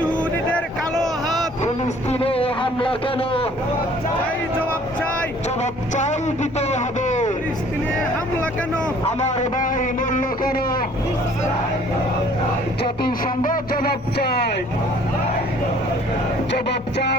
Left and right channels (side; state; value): both; normal; correlation 0.55